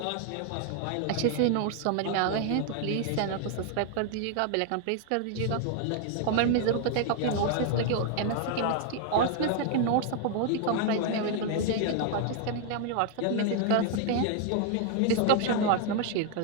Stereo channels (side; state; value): both; different; correlation 0.00